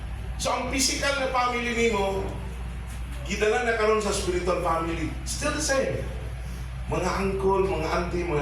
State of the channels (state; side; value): identical; both; correlation 1.00